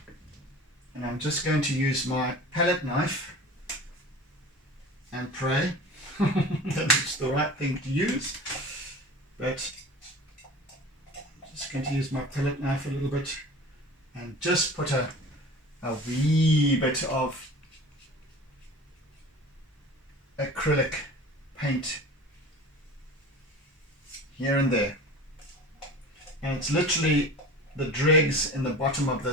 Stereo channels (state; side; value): normal; both; correlation 0.38